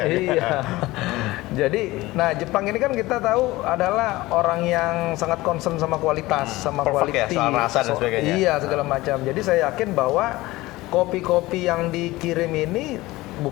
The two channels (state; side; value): quieter; right; 19.2 dB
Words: Iya. Jadi, nah Jepang ini kan kita tahu adalah orang yang sangat concern sama kualitas, sama quality, soal rasa dan sebagainya. Iya, segala macam. Jadi saya yakin bahwa kopi-kopi yang dikirim ini